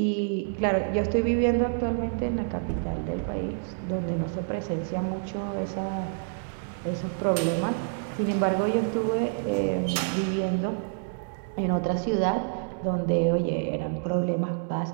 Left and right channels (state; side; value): silent; left; 60 dB below the other